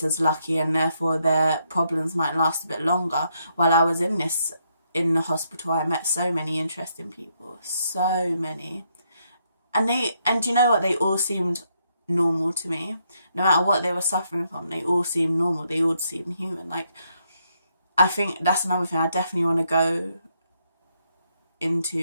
as lucky, and therefore their problems might last a bit longer. While I was in the hospital, I met so many interesting people, so many, and you know what, they all seemed normal to me. No matter what they were suffering from, they all seemed normal. They all seemed human. Like, I think that's another thing. I definitely want to go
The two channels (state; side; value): inverted; both; correlation -0.76